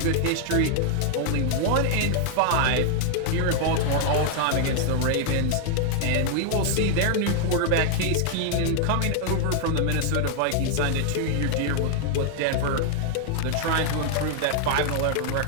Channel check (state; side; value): different; both; correlation 0.00